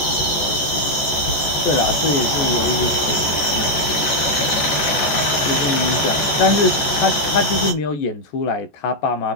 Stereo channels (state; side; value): late; right; 14 ms